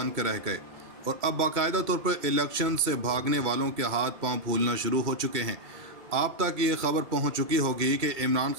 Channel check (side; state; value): left; late; 2.2 ms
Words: कर रह गए और अब बाकायदा तौर पर इलेक्शन से भागने वालों के हाथ पांव फूलना शुरू हो चुके हैं। आप तक ये खबर पहुंच चुकी होगी कि इमरान